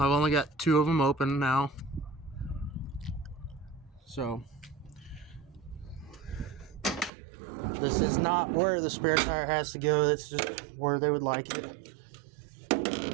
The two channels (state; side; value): drops out; left; at 7.1 s